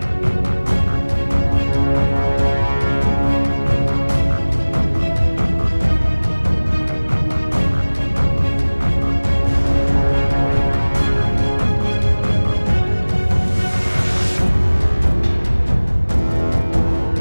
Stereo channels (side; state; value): both; inverted; correlation -1.00